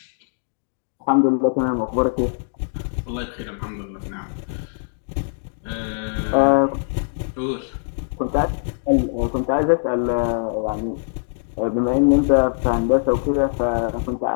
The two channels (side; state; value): right; silent; digital silence